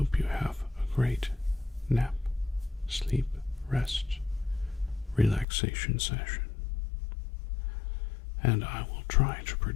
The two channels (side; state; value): right; drops out; at 5.5 s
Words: you have a great nap, sleep, rest, relaxation session. And I will try to